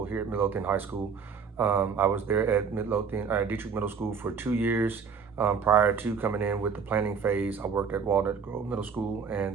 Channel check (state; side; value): quieter; left; 6.0 dB